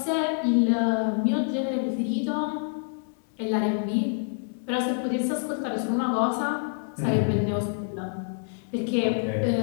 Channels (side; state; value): right; silent; digital silence